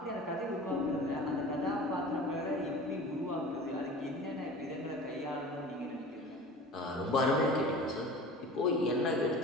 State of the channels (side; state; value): both; normal; correlation 0.39